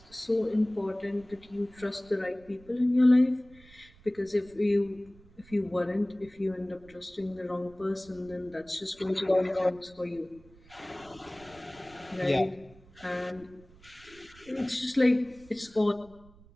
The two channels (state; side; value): noise; right; rumble, 25 dB below the sound